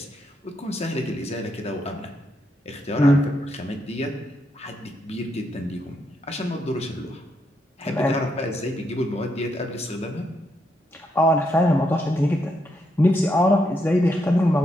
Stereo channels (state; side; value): normal; both; correlation 0.79